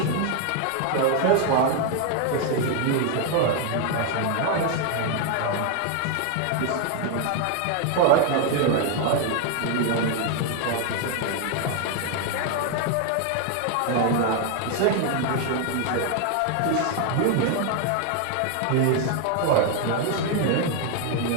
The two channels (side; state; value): both; different; correlation 0.00